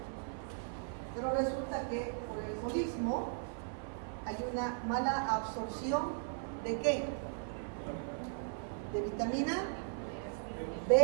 Pero resulta que por el alcoholismo hay una mala absorción ¿de qué? De vitamina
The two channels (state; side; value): silent; left; 52 dB below the other